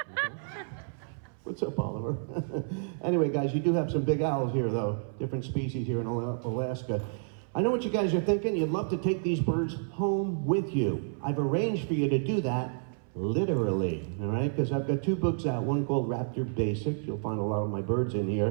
What's up, Oliver? Anyway, guys, you do have some big owls here, though. Different species here in Alaska. I know what you guys are thinking. You'd love to take these birds home with you. I've arranged for you to do that literally, all right? Because I've got 2 books out, one called Raptor Basics. You'll find a lot of my birds in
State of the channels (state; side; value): silent; left; 58 dB below the other